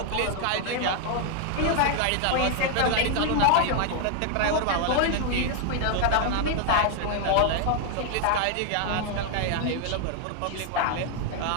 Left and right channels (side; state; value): both; different; correlation 0.00